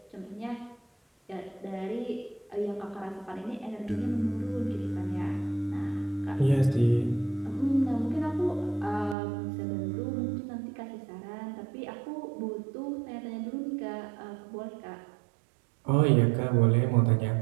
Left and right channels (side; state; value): left; drops out; at 9.2 s